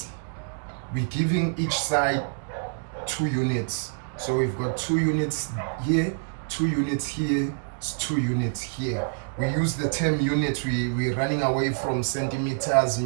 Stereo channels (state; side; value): silent; left; digital silence